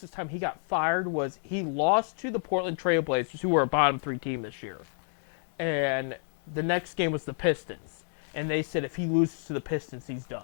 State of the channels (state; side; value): silent; right; 58 dB below the other